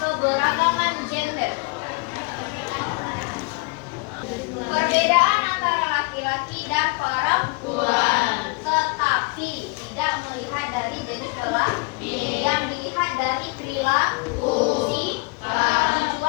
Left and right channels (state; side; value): quieter; right; 29.1 dB